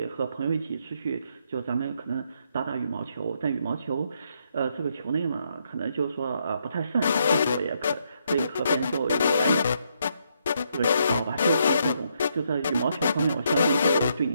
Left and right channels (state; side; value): inverted; both; correlation -0.76